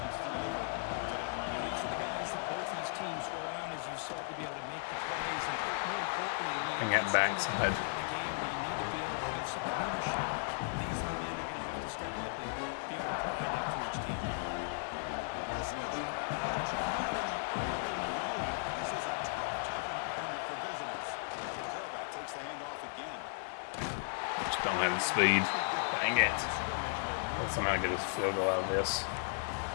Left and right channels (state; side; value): silent; right; digital silence